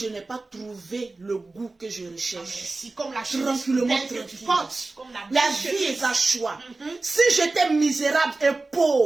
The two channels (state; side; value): quieter; left; 3.4 dB